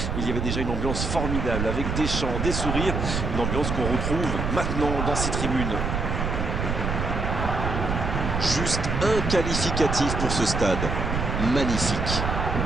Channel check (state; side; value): noise; right; rumble, 2 dB below the sound